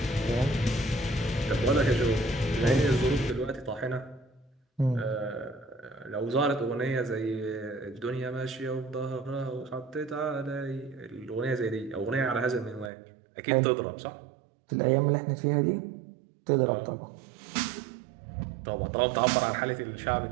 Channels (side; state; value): left; drops out; at 12.9 s